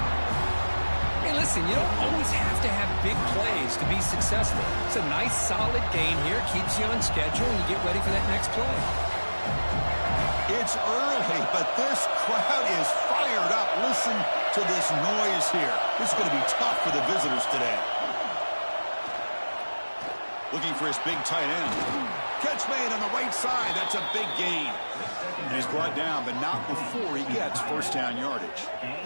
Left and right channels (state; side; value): inverted; both; correlation -1.00